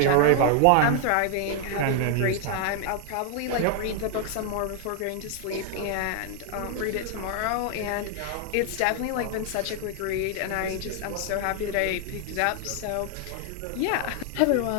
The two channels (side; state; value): both; different; correlation 0.00